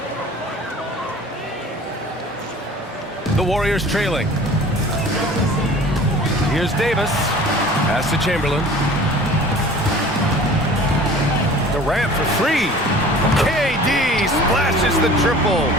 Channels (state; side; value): normal; both; correlation 0.45